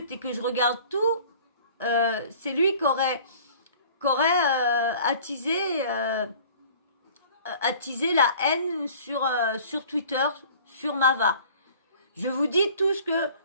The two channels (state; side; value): inverted; both; correlation -0.48